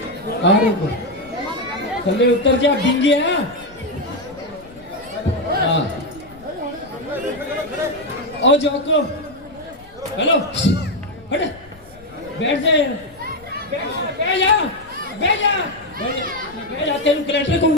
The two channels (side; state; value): left; noise; rumble, 24 dB below the sound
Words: अरे थल्ले उतर जा, बिंगे है। हाँ, ओ जोको, हेलो, हट, बैठ जा यार, बैठ जा, बैठ जा, बैठ जा, तेरे कलेक्टर को